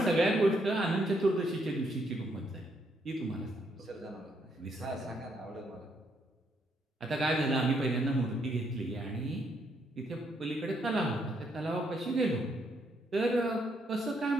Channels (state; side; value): normal; both; correlation 0.74